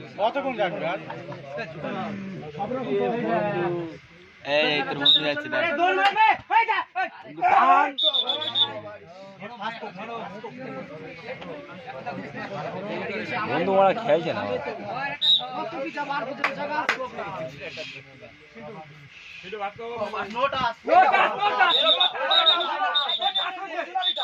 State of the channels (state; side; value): identical; both; correlation 1.00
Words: কতক্ষণ যাবে আর এই তোর বন্ধু যাচ্ছে দেখ দৌড় মারবে হই যা বন্ধু ওরা খেলছে না